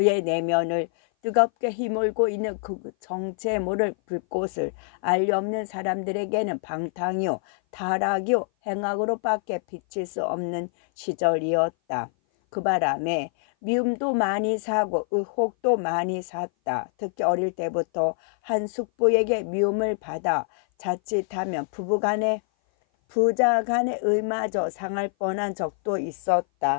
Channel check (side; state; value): right; silent; 57 dB below the other